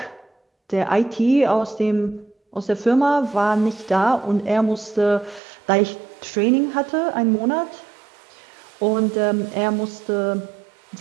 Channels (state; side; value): drops out; left; at 5.4 s